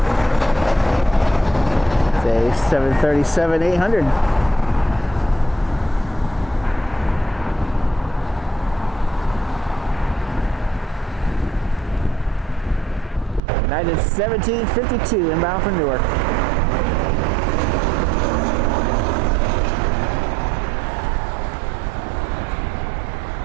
It's a 737-800. United 1752 inbound from Newark.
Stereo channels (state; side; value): drops out; left; at 13.4 s